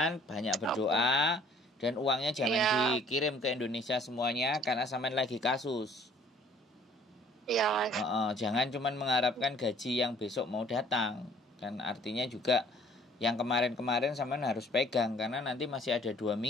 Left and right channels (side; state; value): both; normal; correlation 0.57